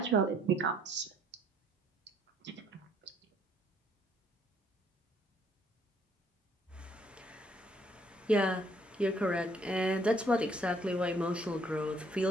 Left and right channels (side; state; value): both; normal; correlation 0.65